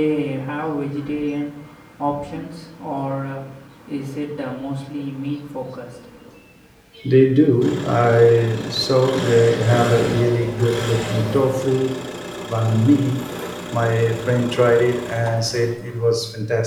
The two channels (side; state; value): both; identical; correlation 1.00